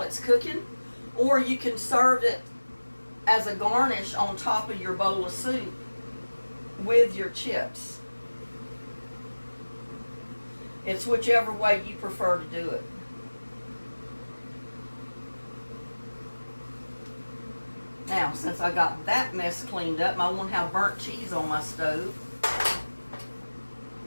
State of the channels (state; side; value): inverted; both; correlation -1.00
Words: it's cooking, or you can serve it as a garnish on top of your bowl of soup with your chips. It's whichever way you prefer to do it. Now, since I got that mess cleaned up, I won't have burnt cheese on my stove.